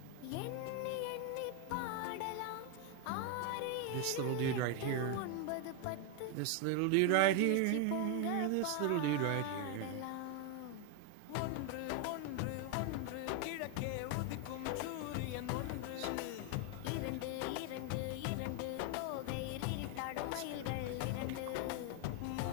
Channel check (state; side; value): different; both; correlation 0.01